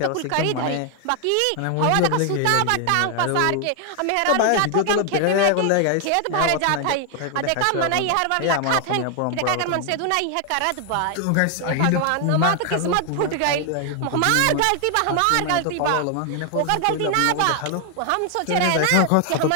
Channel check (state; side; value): different; both; correlation 0.00